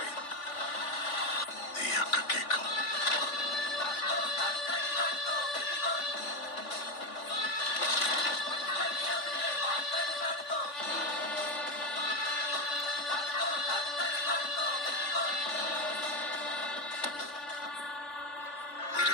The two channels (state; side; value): late; right; 3.5 ms